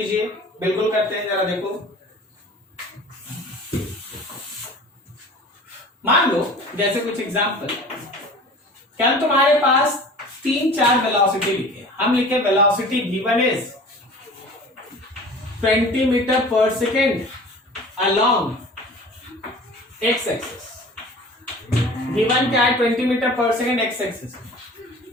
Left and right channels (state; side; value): normal; both; correlation 0.42